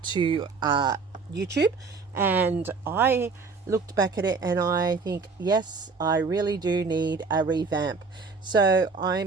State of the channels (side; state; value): left; quieter; 4.6 dB